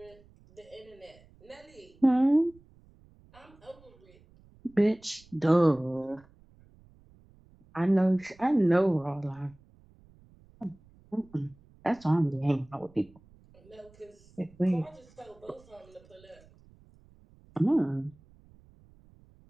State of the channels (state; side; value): noise; right; rumble, 27 dB below the sound